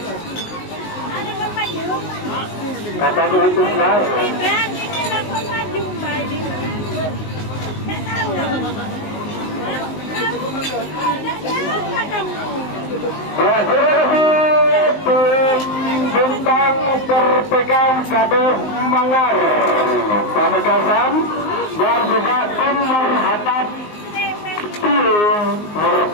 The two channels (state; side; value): late; right; 19 ms